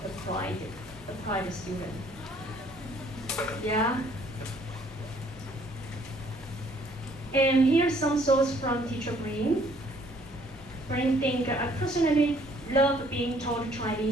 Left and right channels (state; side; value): normal; both; correlation 0.62